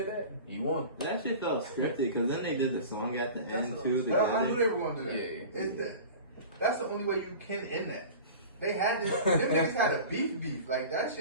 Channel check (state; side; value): inverted; both; correlation -0.37